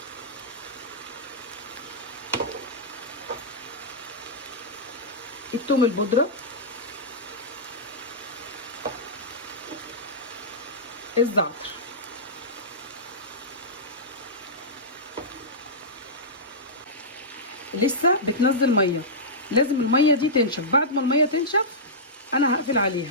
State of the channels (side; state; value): both; normal; correlation -0.14